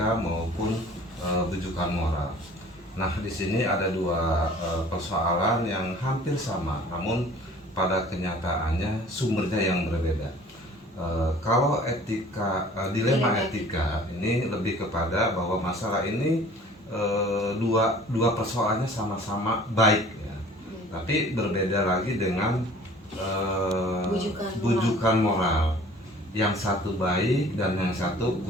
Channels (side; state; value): both; normal; correlation 0.49